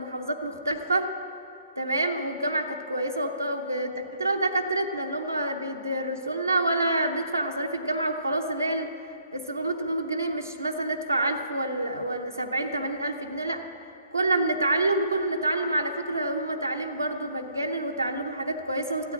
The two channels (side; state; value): both; inverted; correlation -0.67